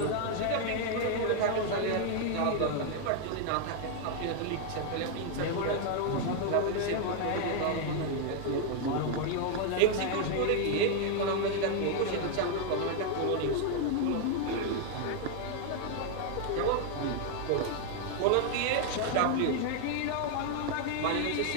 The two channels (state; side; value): different; both; correlation 0.00